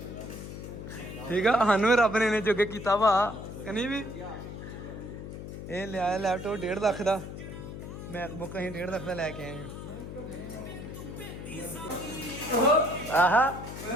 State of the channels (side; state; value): left; noise; hum, 9 dB below the sound